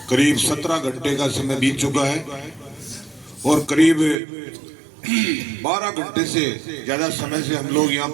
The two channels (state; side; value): drops out; left; at 4.2 s